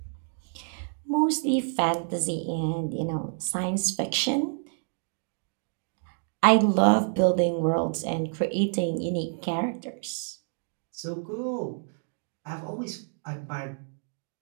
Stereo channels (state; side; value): silent; left; digital silence